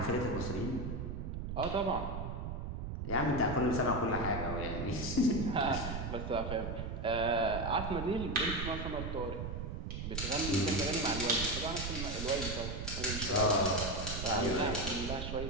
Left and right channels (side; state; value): right; noise; rumble, 4 dB below the sound